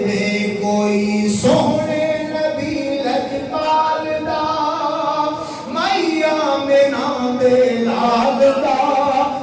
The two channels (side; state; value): both; identical; correlation 1.00